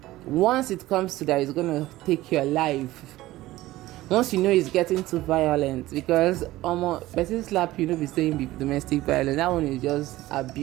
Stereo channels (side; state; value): left; quieter; 16.9 dB